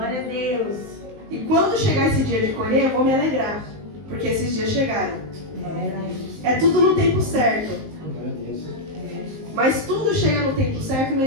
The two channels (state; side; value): late; left; 19 ms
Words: a Deus. E quando chegar esse dia de colher, eu vou me alegrar. Porque esses dias chegaram. É tudo no tempo certo. Mas tudo chega no tempo certo